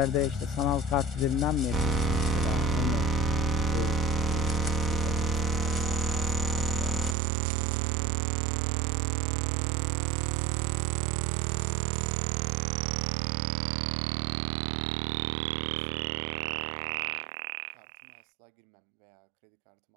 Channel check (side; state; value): left; drops out; at 7.2 s